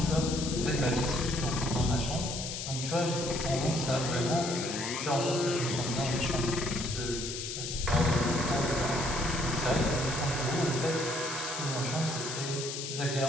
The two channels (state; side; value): noise; left; hiss, 5 dB below the sound